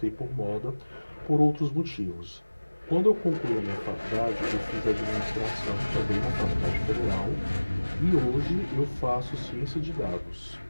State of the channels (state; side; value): inverted; both; correlation -1.00